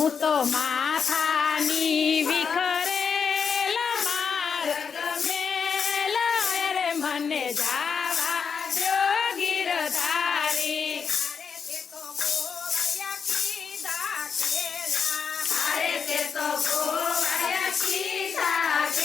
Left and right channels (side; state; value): right; quieter; 6.2 dB